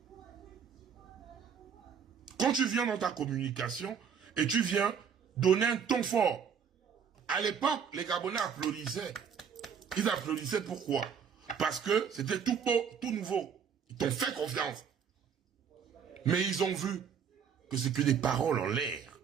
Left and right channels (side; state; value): left; quieter; 7.2 dB